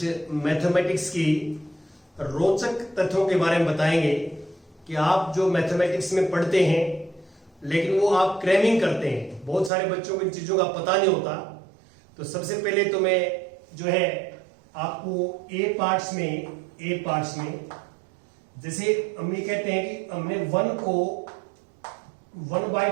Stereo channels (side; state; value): left; drops out; at 9.7 s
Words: मैथमेटिक्स की रोचक तथ्यों के बारे में बताएंगे कि आप जो मैथमेटिक्स में पढ़ते हैं लेकिन वो आप क्रैमिंग करते हैं। बहुत सारे बच्चों को इन चीजों का पता नहीं होता। तो सबसे पहले तो मैं जो है आपको ए पार्ट्स में जैसे हम ये कहते हैं कि हमने 1 को